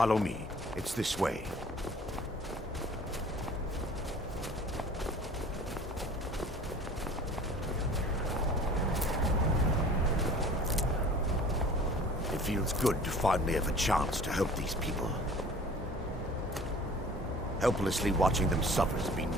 me. It's this way. It feels good to finally have a chance to help these people. Helplessly watching them suffer has been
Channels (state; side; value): normal; both; correlation 0.47